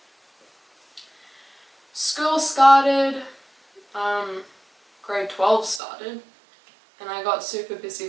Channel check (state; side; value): drops out; left; at 5.8 s